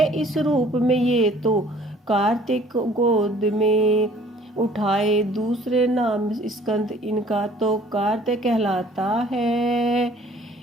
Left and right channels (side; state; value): both; normal; correlation 0.55